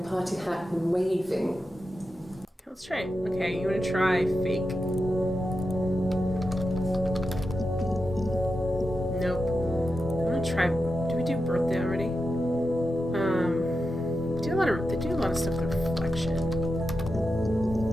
party hat and waving. Let's try it. Okay, you want to try fake? Nope. I'm gonna try. Do we do birthday already? They do a lot of stuff with reflection.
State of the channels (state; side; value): normal; both; correlation 0.90